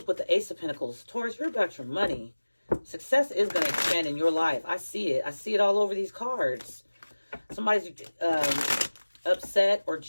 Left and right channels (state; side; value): inverted; both; correlation -1.00